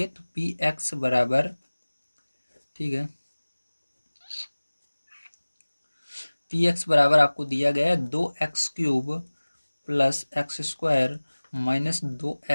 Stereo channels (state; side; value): inverted; both; correlation -1.00